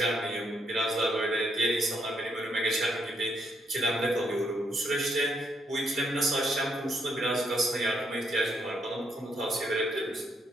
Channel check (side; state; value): both; normal; correlation 0.75